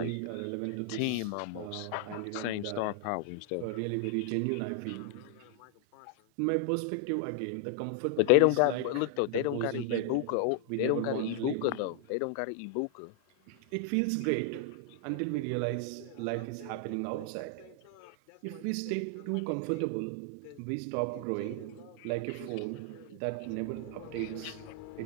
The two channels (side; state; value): both; different; correlation 0.00